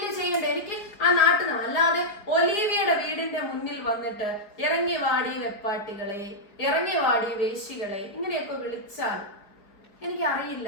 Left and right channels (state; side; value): late; right; 4.9 ms